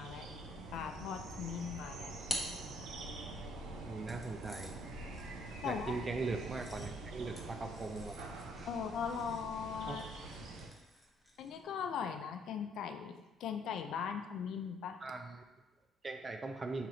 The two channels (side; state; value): both; normal; correlation 0.66